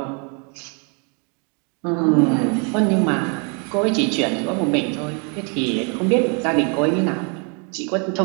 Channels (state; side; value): quieter; left; 35.7 dB